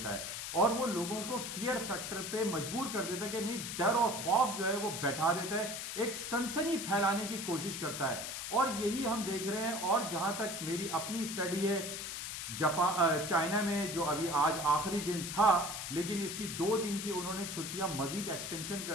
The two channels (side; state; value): left; noise; hiss, 5 dB below the sound